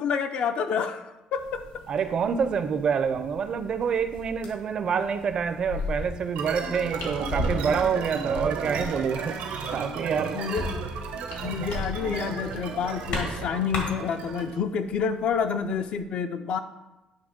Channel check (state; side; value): normal; both; correlation 0.57